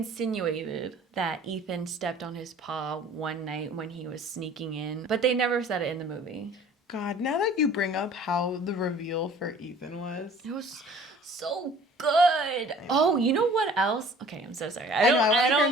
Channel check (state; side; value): normal; both; correlation 0.50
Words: that Ethan stepped on his paw one night when he was sneaking in, but they never said it in the movie. God, now that you bring up how the reveal for Ethan was. It was so good. Oh, you know what else? Okay, I'm so sorry. I want to hear